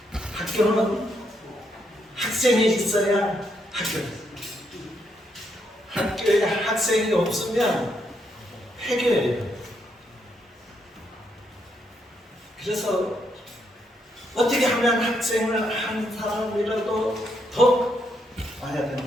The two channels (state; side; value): normal; both; correlation 0.76